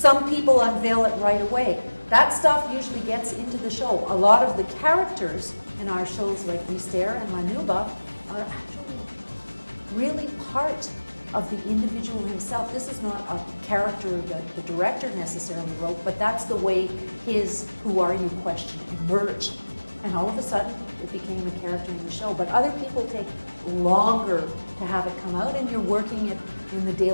people unveil it right away. That stuff usually gets into the show. A lot of the characters in our shows like Mystère and La Nuba are actually really part of the individual himself. This is not a character that the director necessarily wrote, but that's the way his "who are you" question emerged. And all of a sudden, it became a character in the show. But other people take longer to have it come out, and you're working it in the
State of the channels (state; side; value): inverted; both; correlation -1.00